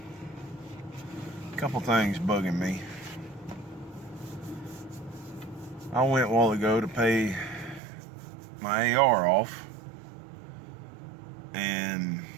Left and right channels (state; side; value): drops out; left; at 7.8 s